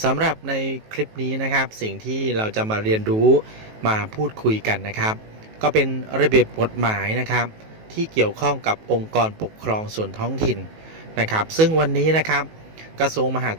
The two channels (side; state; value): left; late; 19 ms